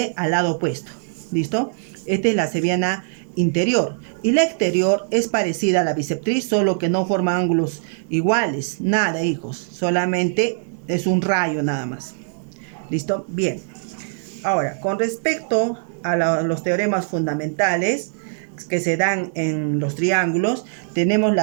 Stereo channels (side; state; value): left; silent; digital silence